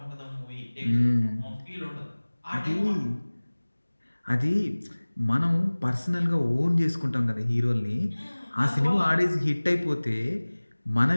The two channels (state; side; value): inverted; both; correlation -1.00